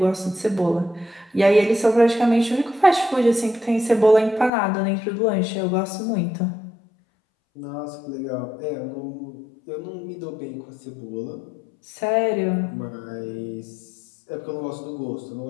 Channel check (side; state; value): right; drops out; at 4.5 s